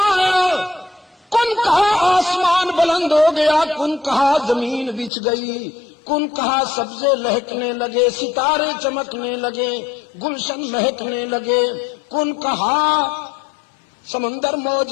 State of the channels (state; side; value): drops out; right; at 5.1 s